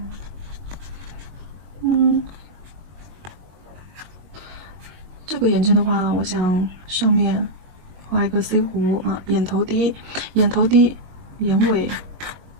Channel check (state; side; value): late; left; 21 ms